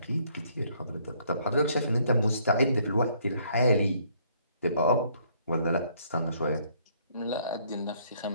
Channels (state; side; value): inverted; both; correlation -0.65